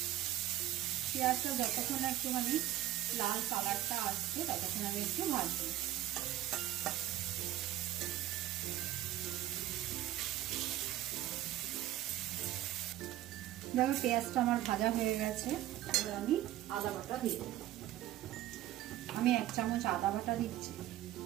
পেঁয়াজটা যতক্ষণ একটুখানি লাল কালারটা আসছে ততক্ষণ আমি একটু ভাজবো। দেখো পেঁয়াজটা আমার ভাজা হয়ে গেছে। এবার আমি আদা বাটা দিয়ে দেবো। আমি 1 চামচ আদা বাটা দিচ্ছি,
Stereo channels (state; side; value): quieter; left; 13.7 dB